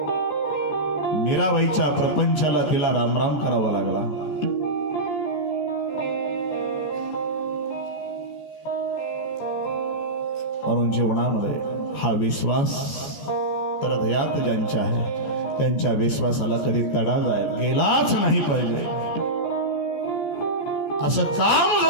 मीराबाईच्या प्रपंचाला तिला रामराम करावा लागला. म्हणून जीवनामध्ये हा विश्वास तर हृदयात ज्यांच्या आहे त्यांच्या विश्वासाला कधी तडा गेलाच नाही पाहिजे. असं काम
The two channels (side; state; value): right; late; 14 ms